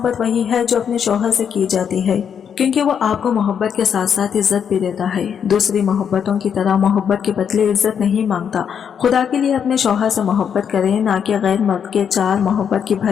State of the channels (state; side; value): quieter; right; 7.7 dB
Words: वही है जो अपने शौहर से की जाती है, क्योंकि वो आपको मोहब्बत के साथ साथ इज्जत भी देता है। दूसरी मोहब्बतों की तरह मोहब्बत के बदले इज्जत नहीं मांगता। खुदा के लिए अपने शौहर से मोहब्बत करें, ना कि गैर मर्द के 4 मोहब्बत की